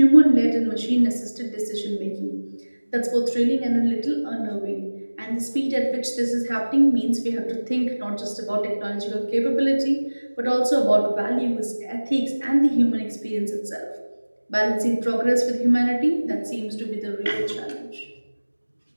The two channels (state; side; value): inverted; both; correlation -1.00